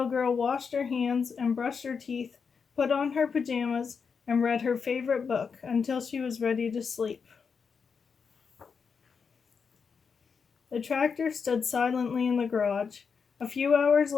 girl washed her hands and brushed her teeth, put on her pajamas, and read her favorite book until she was ready to sleep. The tractor stood silently in the garage. A few hours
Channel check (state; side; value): quieter; right; 5.9 dB